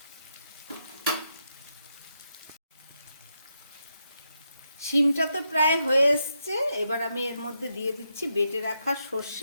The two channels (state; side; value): inverted; both; correlation -0.82